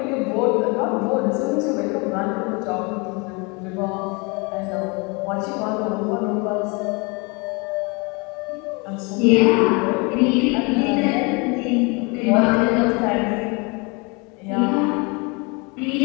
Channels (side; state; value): right; quieter; 29.7 dB